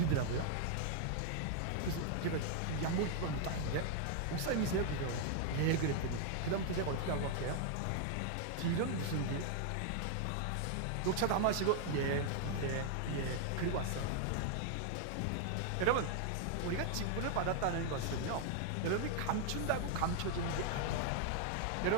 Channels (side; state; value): both; different; correlation 0.00